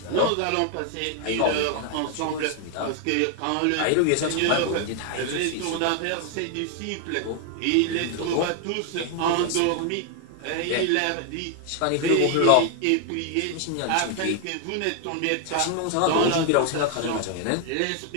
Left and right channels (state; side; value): different; both; correlation 0.00